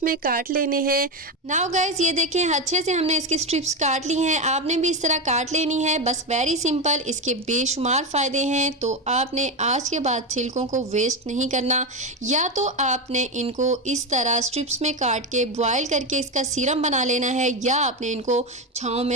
में काट लेने हैं। नाउ गाइस, ये देखें अच्छे से हमने इसकी स्ट्रिप्स काट ली हैं। आपने भी इस तरह काट लेनी है, बस वेरी सिंपल। इसके बेशुमार फ़ायदे हैं। तो आपने आज के बाद छिलकों को वेस्ट नहीं करना। या तो आपने इनको इस तरह स्ट्रिप्स में काट के बॉयल करके इसका सीरम बना लेना है, या आपने इनको छांव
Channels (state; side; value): normal; both; correlation 0.13